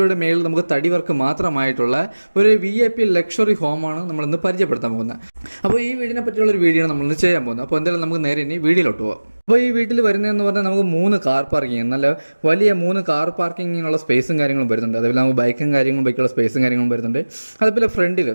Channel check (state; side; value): inverted; both; correlation -1.00